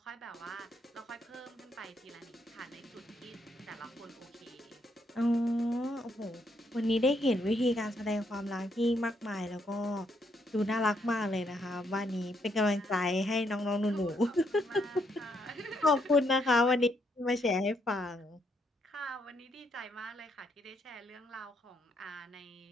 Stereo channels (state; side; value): normal; both; correlation 0.75